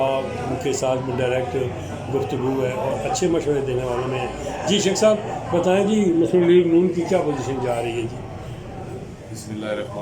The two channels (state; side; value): identical; both; correlation 1.00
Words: ان کے ساتھ بھی ڈائریکٹ گفتگو ہے اور اچھے مشورے دینے والوں میں ہیں۔ جی شیخ صاحب بتائیں جی، مسلم لیگ نون کی کیا پوزیشن جا رہی ہے؟ جی بسم اللہ